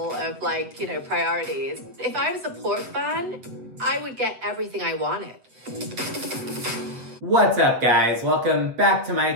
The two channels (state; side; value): late; left; 8.3 ms